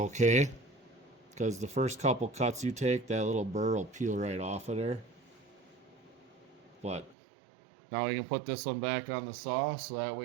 because the first couple cuts you take, that little burr will peel right off of there. But now we can put this one back on the saw, so that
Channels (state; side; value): drops out; left; at 7.2 s